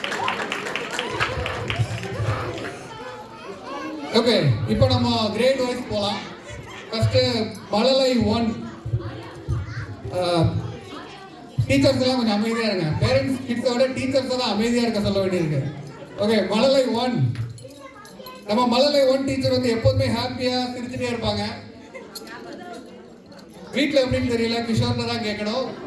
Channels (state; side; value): identical; both; correlation 1.00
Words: ஓகே, இப்போ நம்ம கிரேட் வைஸ் போகலாம். ஃபர்ஸ்ட் மழலை 1 டீச்சர்ஸ் எல்லாம் கொஞ்சம் அமைதியாக இருங்க. பேரண்ட்ஸ் கிட்ஸோட டீச்சர்ஸ் தான் அமைதியாக இருக்க சொல்ல வேண்டியிருக்கு. ஓகே, மழலை 1. நம்ம மழலை 1 டீச்சர் வந்து எப்போதுமே ஹாப்பியாக சிரிச்சுட்டே இருப்பாங்க. வீட்டில் எப்படின்னு தெரியல, கிஷோர்ல தான் கேட்கணும்.